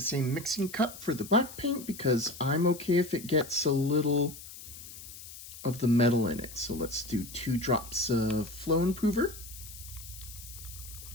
same mixing cup for the black paint because I'm okay if it gets a little of the metal in it. So let's do 2 drops of flow improver.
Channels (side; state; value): left; noise; hiss, 14 dB below the sound